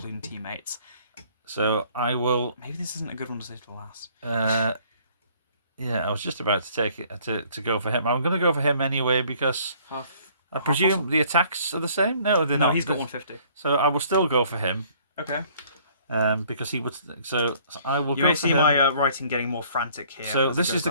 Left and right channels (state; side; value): inverted; both; correlation -0.58